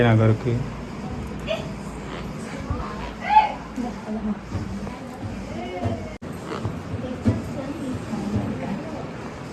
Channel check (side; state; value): both; identical; correlation 1.00